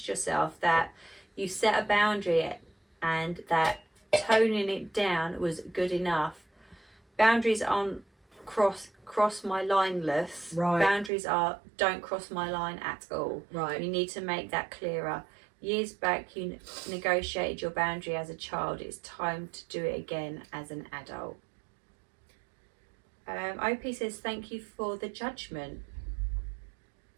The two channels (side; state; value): left; drops out; at 11.1 s